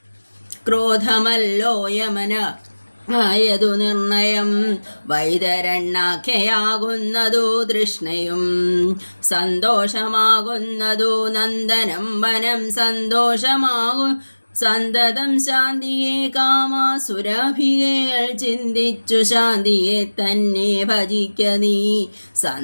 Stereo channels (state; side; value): inverted; both; correlation -1.00